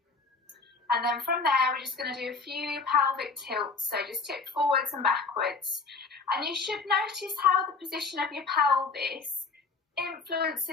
And then from there, we're just going to do a few pelvic tilts. So just tip forwards and backwards. And you should notice how the position of your pelvis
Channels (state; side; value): quieter; right; 4.4 dB